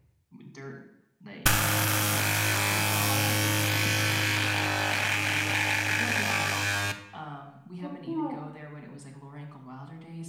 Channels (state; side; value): identical; both; correlation 1.00